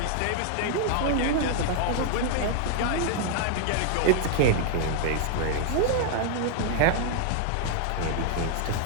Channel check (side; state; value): both; different; correlation 0.00